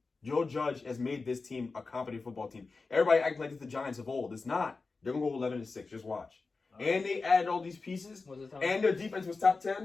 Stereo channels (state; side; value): quieter; right; 4.0 dB